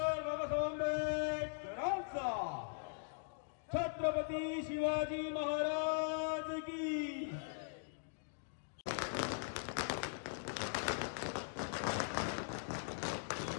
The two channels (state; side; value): silent; right; digital silence